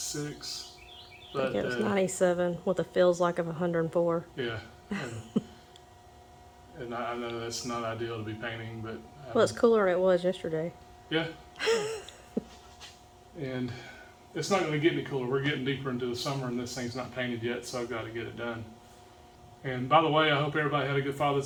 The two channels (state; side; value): identical; both; correlation 1.00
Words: But, I think it was 97 with a feels like of 104. Yeah. And I know that's not ideal to be painting, but well, it's cooler than it was yesterday. Yeah. And it's not going to get any cooler. We're getting deeper into the summer and this thing's not painted yet, so I've got to get it done. And by the way, I hope everybody had a good